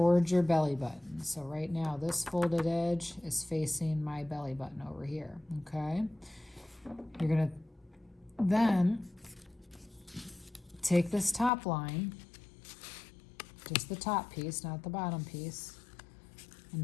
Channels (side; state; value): right; drops out; at 11.5 s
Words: your belly button. So right now this folded edge is facing my belly button over here, okay? You're gonna then take this top line, just the top piece, not the bottom piece,